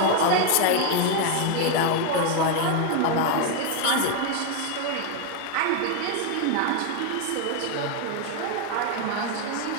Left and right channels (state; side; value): different; both; correlation 0.01